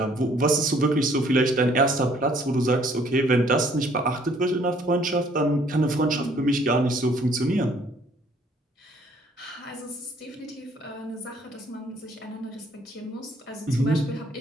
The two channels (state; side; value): normal; both; correlation 0.61